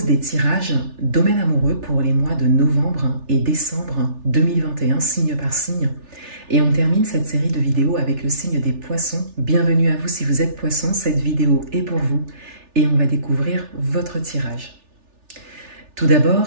des tirages domaine amoureux pour les mois de novembre et décembre 2021, signe par signe. Et on termine cette série de vidéos avec le signe des poissons. Bienvenue à vous si vous êtes poisson, cette vidéo est pour vous et on va découvrir votre tirage. Tout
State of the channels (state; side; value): late; left; 3.4 ms